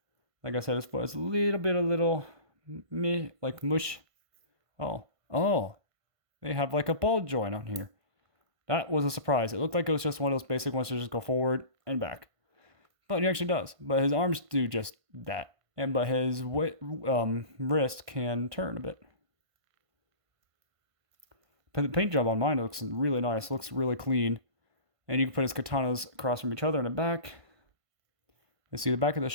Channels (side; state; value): left; late; 1.5 ms